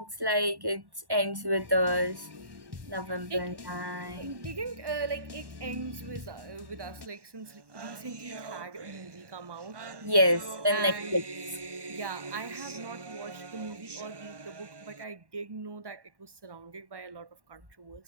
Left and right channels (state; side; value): late; left; 1.1 ms